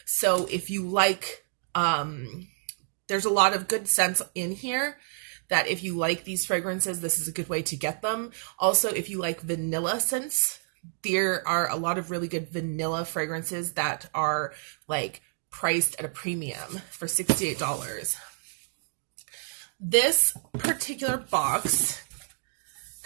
So if you like, there's a lot of good scents in here that if you like these fragrances, this is a good way to get them. Also, if you like vanilla scents, there are a lot of really good vanilla fragrances that are like priced at a premium for $68. This particular box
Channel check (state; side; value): silent; left; digital silence